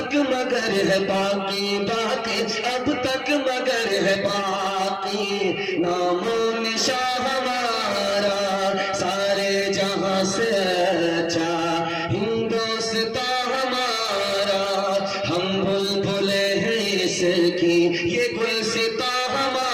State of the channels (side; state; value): both; identical; correlation 1.00